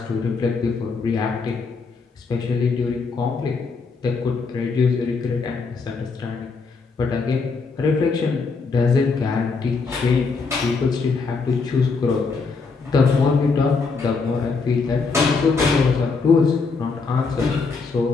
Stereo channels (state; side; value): quieter; right; 4.6 dB